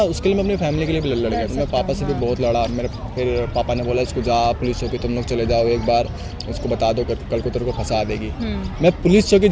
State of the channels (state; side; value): identical; both; correlation 1.00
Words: उसके लिए मैं अपनी फैमिली के लिए भी लड़ गया। मैं पापा से भी बहुत लड़ा। मेरे फिर पापा ने बोला इसको जा पुलिस चौकी तुम लोग चले जाओ, एक बार उसको बता दो, कल को तेरे को फंसा देगी। मैं पुलिस चौकी